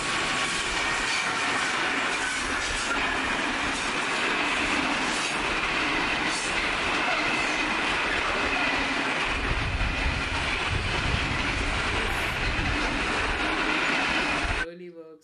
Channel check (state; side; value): identical; both; correlation 1.00